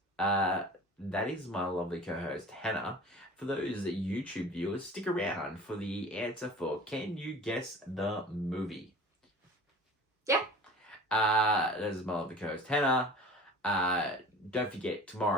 That is my lovely co-host Hannah. For those YouTube viewers, stick around for the answer for Can You Guess the Movie? Yeah. That is my lovely co-host Hannah. Don't forget,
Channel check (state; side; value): normal; both; correlation 0.41